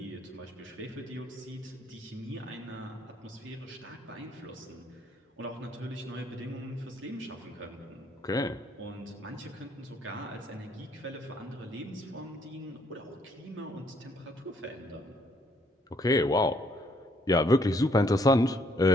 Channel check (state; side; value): normal; both; correlation 0.67